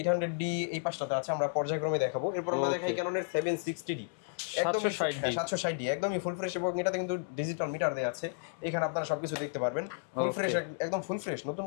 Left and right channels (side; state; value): right; silent; digital silence